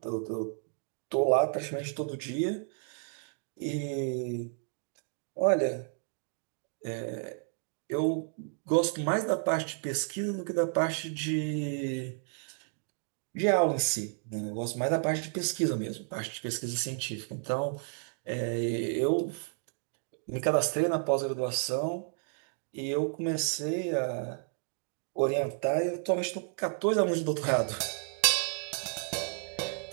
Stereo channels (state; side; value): silent; left; 56 dB below the other